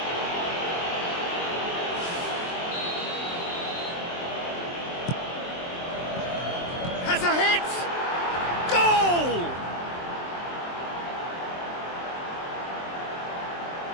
Has a hit! Goal!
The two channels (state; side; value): late; right; 23 ms